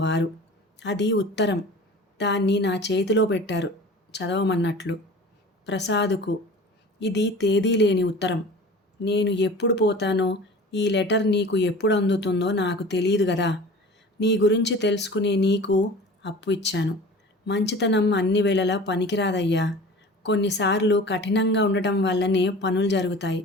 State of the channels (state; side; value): normal; both; correlation 0.40